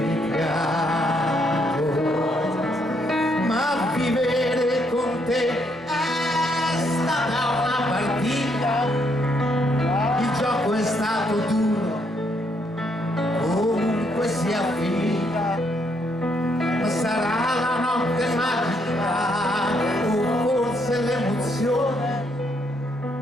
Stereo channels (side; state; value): both; normal; correlation 0.73